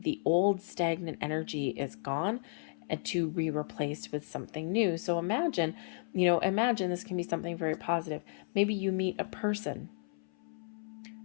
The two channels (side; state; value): right; silent; 55 dB below the other